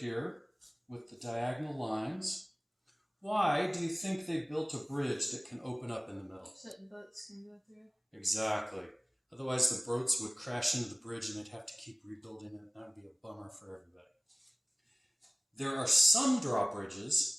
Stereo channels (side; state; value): both; identical; correlation 1.00